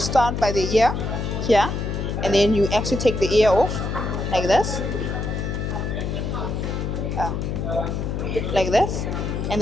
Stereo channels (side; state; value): left; noise; hum, 2 dB below the sound